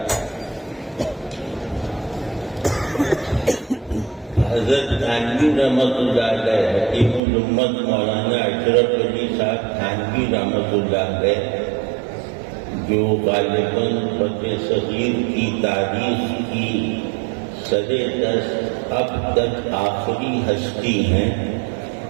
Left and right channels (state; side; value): drops out; left; at 7.2 s